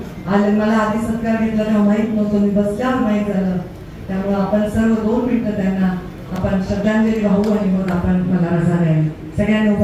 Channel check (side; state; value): both; identical; correlation 1.00